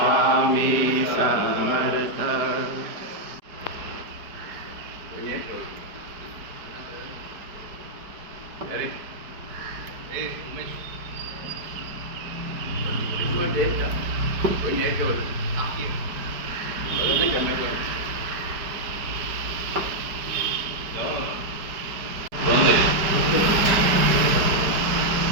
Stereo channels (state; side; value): late; left; 4.9 ms